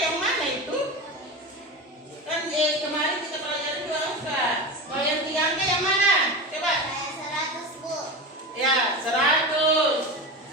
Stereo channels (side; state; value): both; normal; correlation 0.25